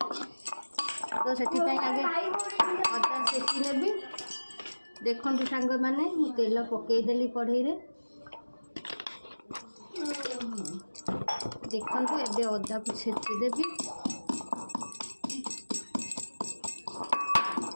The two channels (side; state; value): both; inverted; correlation -1.00